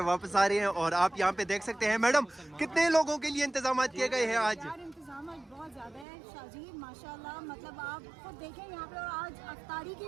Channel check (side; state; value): left; drops out; at 6.1 s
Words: वापस आ रहे हैं। और आप यहाँ पे देख सकते हैं मैडम, कितने लोगों के लिए इंतजाम किए गए हैं आज? इंतजाम बहुत ज़्यादा है शाजी, माशाल्लाह। मतलब आप खुद देखें यहाँ पे आज अफ्तारी की